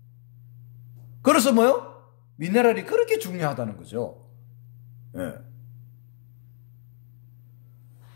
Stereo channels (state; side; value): silent; right; digital silence